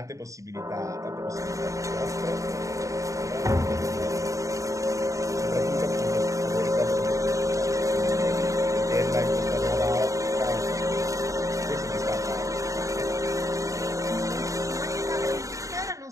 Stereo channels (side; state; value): left; late; 0.16 ms